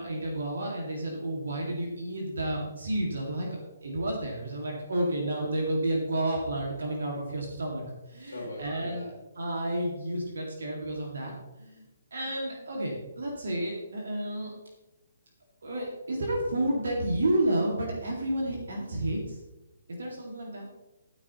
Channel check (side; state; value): both; inverted; correlation -0.80